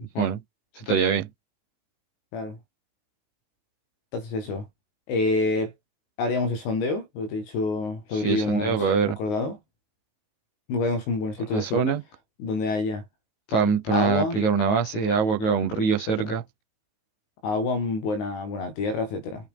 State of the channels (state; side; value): late; right; 19 ms